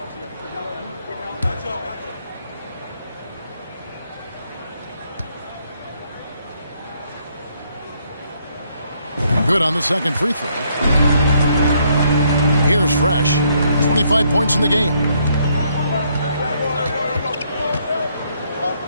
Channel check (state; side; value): inverted; both; correlation -0.71